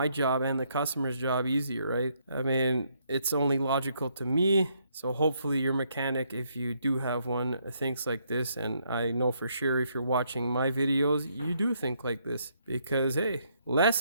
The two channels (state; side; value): inverted; both; correlation -0.73